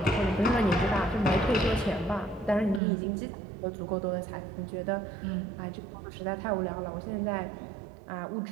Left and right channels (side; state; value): left; drops out; at 2.8 s